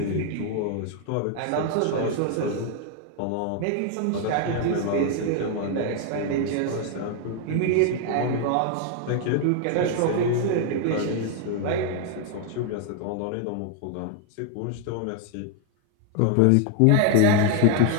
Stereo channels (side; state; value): both; different; correlation 0.00